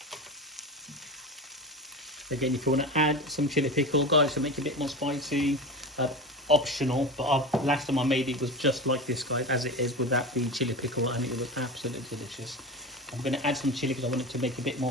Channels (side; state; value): both; normal; correlation 0.27